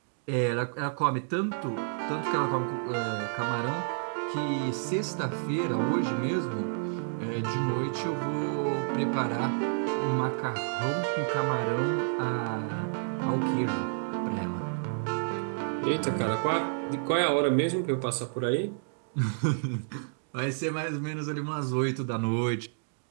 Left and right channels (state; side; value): silent; left; digital silence